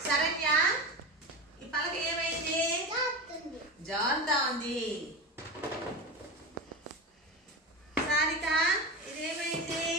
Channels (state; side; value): normal; both; correlation 0.24